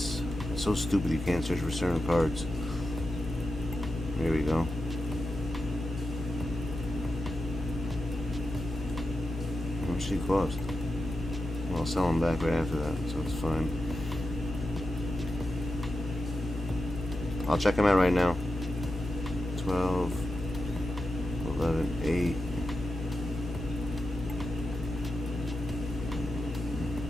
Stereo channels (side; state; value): both; normal; correlation 0.89